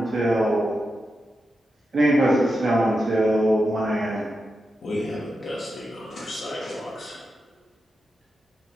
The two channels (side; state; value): both; normal; correlation 0.89